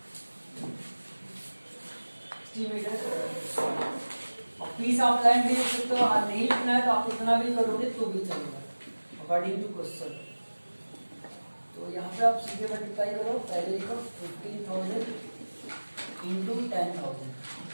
metre. Piece of land भी लिख सकते हो, नहीं लिखना है तो आप इतना भी करोगे तो भी चलेगा अकॉर्डिंग टू क्वेश्चन। तो यहाँ पे आप सीधे मल्टीप्लाई करो, पहले लिखो 15,000 इंटू 10,000।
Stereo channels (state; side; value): inverted; both; correlation -1.00